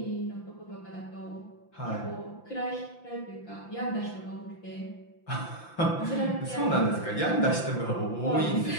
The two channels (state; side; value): late; right; 5.8 ms